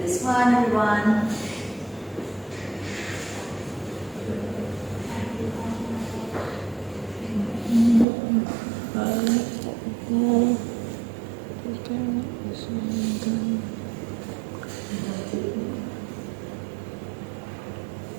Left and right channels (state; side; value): drops out; left; at 8.1 s